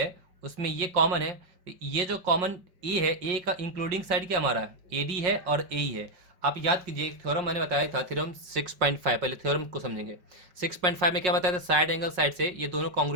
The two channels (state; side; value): late; left; 5.5 ms